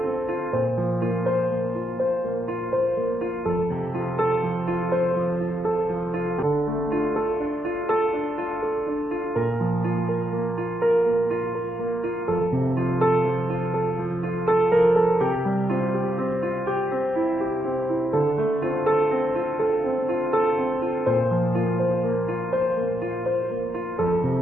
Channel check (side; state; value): both; normal; correlation 0.80